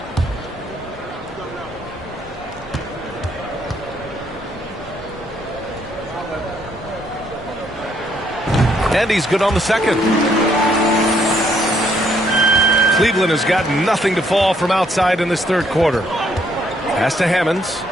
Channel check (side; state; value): both; normal; correlation 0.69